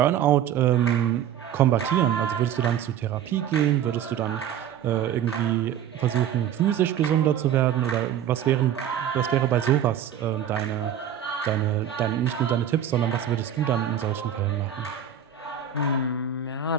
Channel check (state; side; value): quieter; left; 9.5 dB